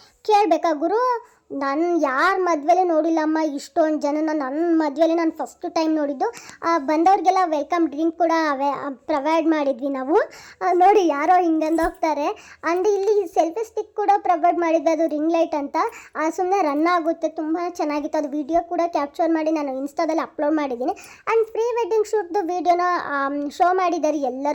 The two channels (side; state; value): both; identical; correlation 1.00